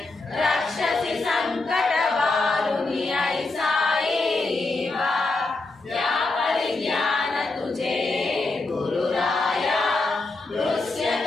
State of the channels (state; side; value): quieter; right; 3.4 dB